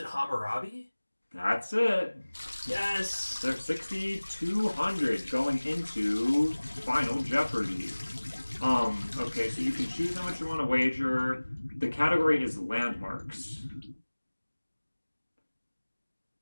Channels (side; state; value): both; inverted; correlation -1.00